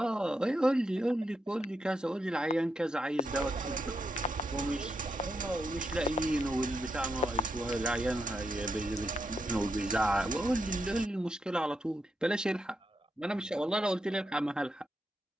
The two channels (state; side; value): normal; both; correlation 0.83